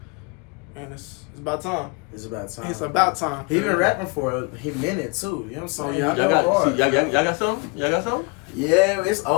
and it's about time. It's about time. It's about time. He been rapping for a minute too. You know what I'm saying? Oh, yeah, I Y'all Go got, hard. see, y'all got something? Y'all got something? Yeah, it's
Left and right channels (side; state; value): right; quieter; 29.6 dB